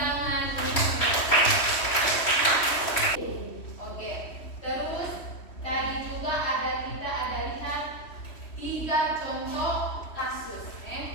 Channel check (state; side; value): late; right; 3.1 ms